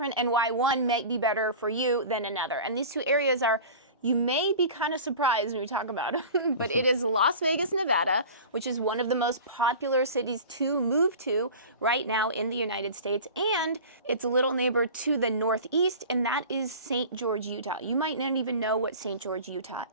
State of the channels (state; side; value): inverted; both; correlation -0.37